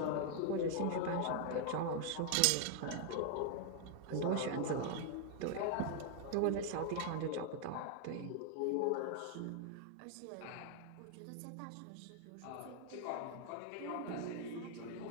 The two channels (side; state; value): both; different; correlation 0.00